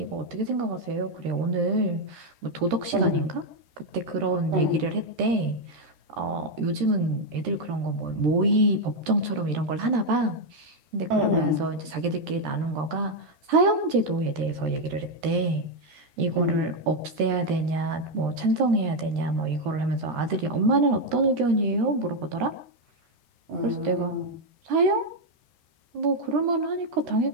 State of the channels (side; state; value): left; late; 13 ms